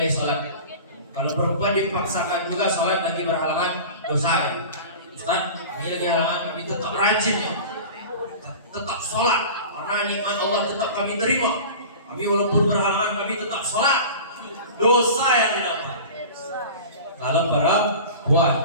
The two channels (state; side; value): inverted; both; correlation -0.36